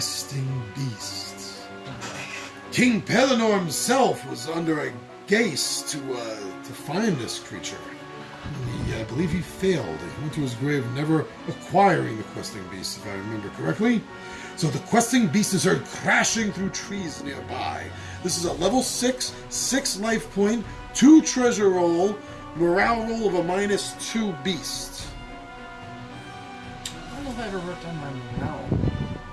Beast. King Pellinor himself was under a gaze to find this creature. I believe he failed. He went to his grave never acquiring the Questing Beast, if I remember correctly. So the Questing Beast is heard crashing through trees nearby. This is a level 6, 6 life point, 2 treasure roll, morale roll of a -2 beast. I don't know if I ever wrote down my morale.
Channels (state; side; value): identical; both; correlation 1.00